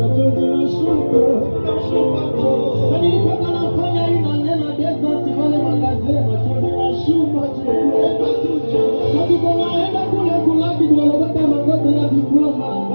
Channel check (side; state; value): both; inverted; correlation -1.00